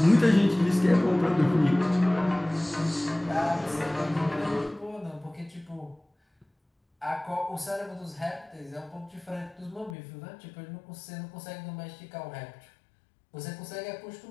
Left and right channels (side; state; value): right; drops out; at 10.0 s